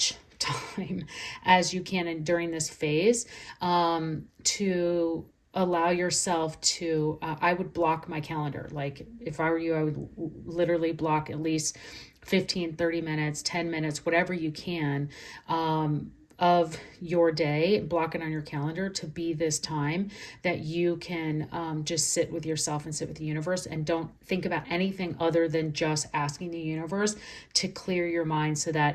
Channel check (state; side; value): identical; both; correlation 1.00